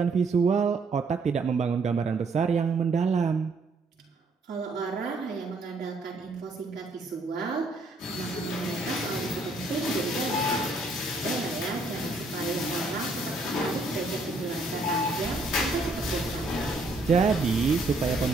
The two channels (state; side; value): quieter; left; 3.0 dB